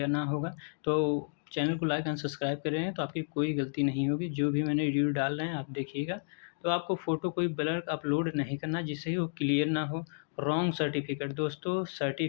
होगा। तो चैनल को लाइक एंड सब्सक्राइब कर रहे हैं तो आपकी कोई गलती नहीं होगी। जो भी मैंने वीडियो डाल रहे हैं आप देखिएगा। तो आपको फ़ोटो कोई ब्लर अपलोड नहीं करना जिससे कि वो क्लियर ना हो। रॉन्ग सर्टिफिकेट, दोस्तों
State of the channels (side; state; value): right; silent; digital silence